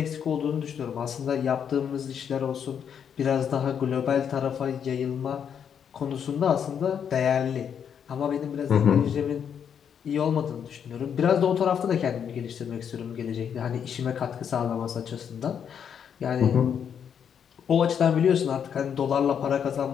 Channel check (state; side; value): quieter; right; 8.0 dB